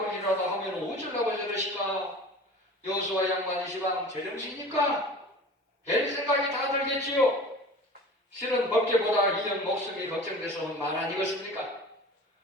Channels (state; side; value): normal; both; correlation 0.39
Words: 버리라도 하면 어쩌려고 저러실까? 여호수아 양반이 시방 제정신이니까 될 생각이 다 들겠지요. 실은 법계보다 이전 목숨이 걱정돼서 말 아니겠습니까?